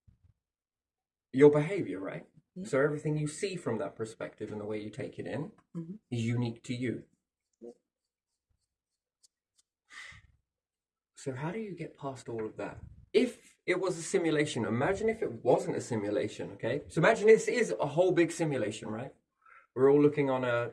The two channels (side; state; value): both; identical; correlation 1.00